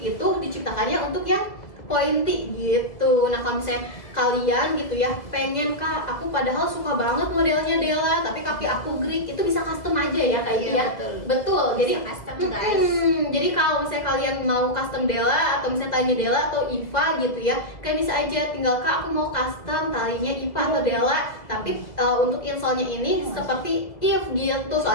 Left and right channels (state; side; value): late; right; 2.0 ms